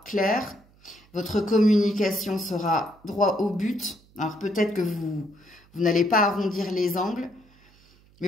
claire, votre communication sera droit au but. Alors peut-être que vous n'allez pas arrondir les angles, mais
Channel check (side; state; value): right; noise; hum, 29 dB below the sound